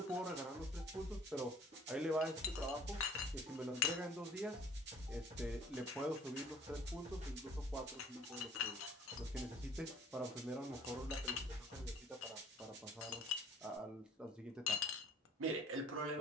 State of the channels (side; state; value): both; normal; correlation 0.53